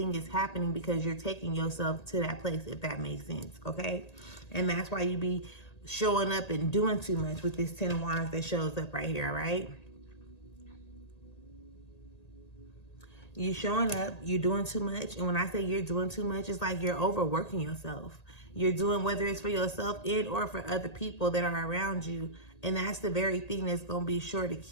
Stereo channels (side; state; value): right; late; 1.8 ms